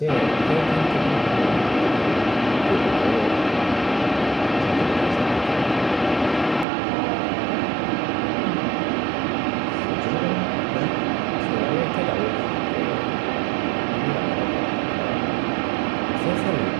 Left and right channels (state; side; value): drops out; left; at 6.7 s